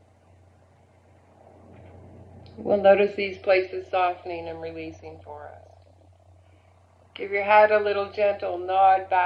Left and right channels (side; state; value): both; identical; correlation 1.00